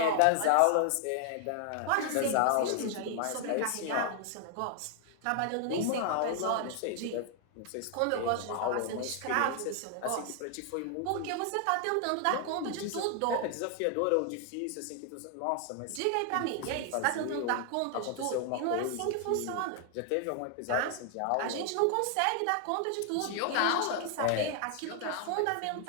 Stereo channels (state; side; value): different; both; correlation 0.00